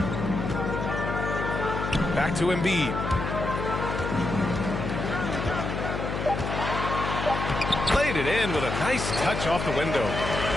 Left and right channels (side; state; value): left; noise; hum, 3 dB below the sound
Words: Back to Embiid. Played it in with a nice touch off the window.